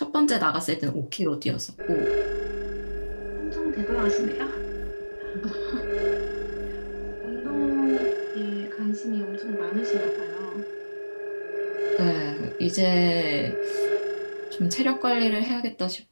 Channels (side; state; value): both; inverted; correlation -1.00